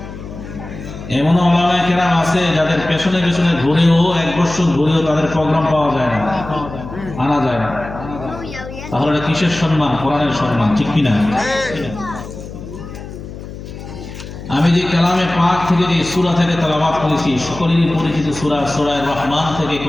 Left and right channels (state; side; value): noise; left; hum, 12 dB below the sound